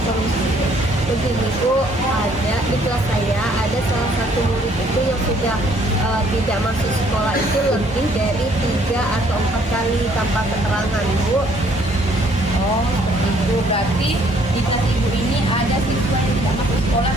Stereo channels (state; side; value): normal; both; correlation 0.63